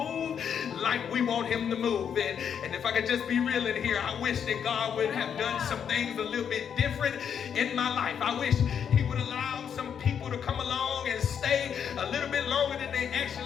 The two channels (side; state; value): right; quieter; 7.9 dB